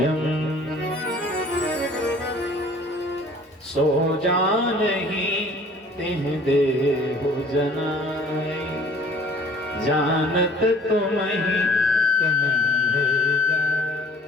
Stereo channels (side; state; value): both; normal; correlation 0.52